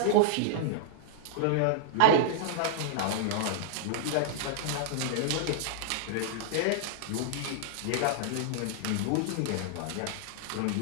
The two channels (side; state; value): both; different; correlation -0.01